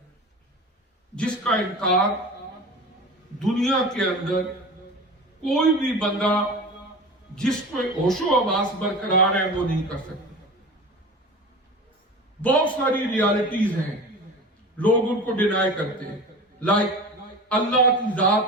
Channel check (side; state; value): both; normal; correlation 0.34